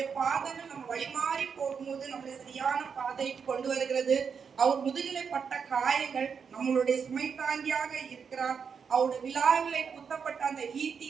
பாதங்கள் நம்ம வழிமாறி போகும்போது நம்மளை சரியான பாதைக்கு கொண்டு வருகிறது, அவர் முதுகிலே பட்ட காயங்கள் நம்மளுடைய சுமை தாங்கியாக இருக்கிறார், அவருடைய விழாவிலே குத்தப்பட்ட அந்த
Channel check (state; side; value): quieter; left; 6.4 dB